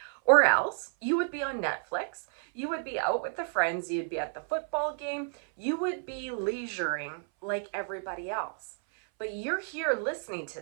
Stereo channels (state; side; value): silent; left; 57 dB below the other